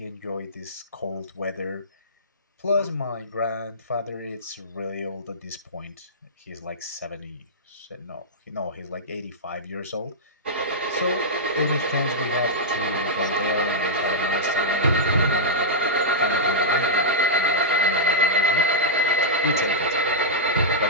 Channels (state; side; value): normal; both; correlation -0.12